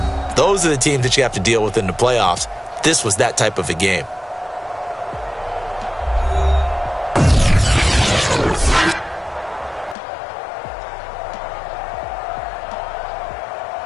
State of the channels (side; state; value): right; drops out; at 10.0 s